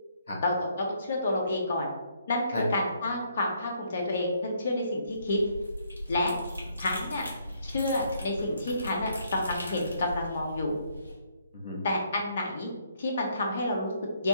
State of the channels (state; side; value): inverted; both; correlation -0.70